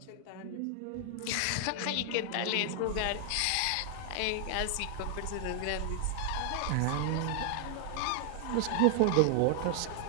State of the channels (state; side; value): different; both; correlation 0.00